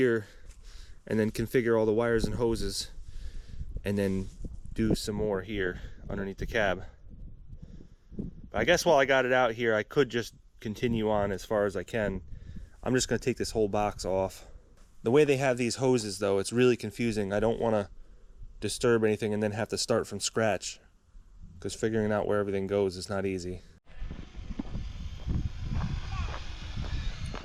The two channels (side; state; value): both; identical; correlation 1.00